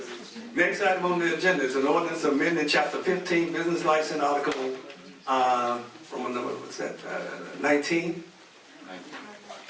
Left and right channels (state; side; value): identical; both; correlation 1.00